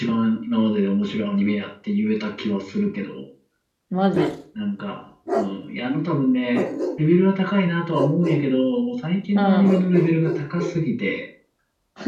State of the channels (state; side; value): identical; both; correlation 1.00